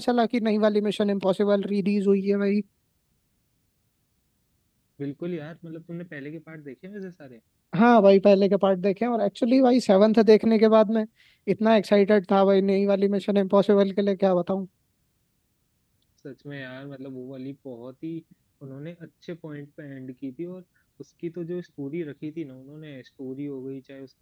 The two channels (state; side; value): identical; both; correlation 1.00